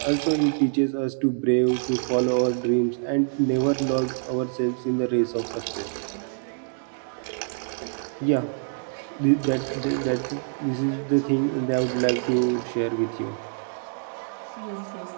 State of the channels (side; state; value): left; silent; digital silence